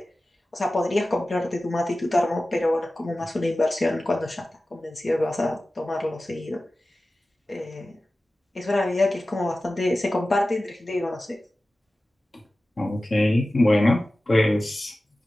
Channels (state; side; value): normal; both; correlation 0.96